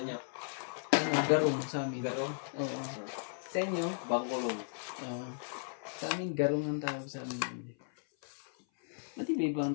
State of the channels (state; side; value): silent; right; 54 dB below the other